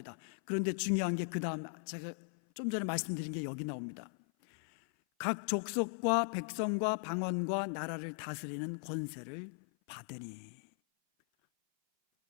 그런데 중요한 게 그 다음, 제가 좀 전에 말씀드린 게 여기 나옵니다. 각 족속과 백성과 방언과 나라를 다스리는 권세를 받으니,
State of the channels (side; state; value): right; silent; 53 dB below the other